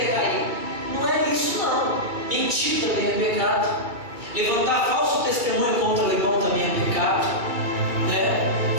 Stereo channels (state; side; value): late; left; 2.2 ms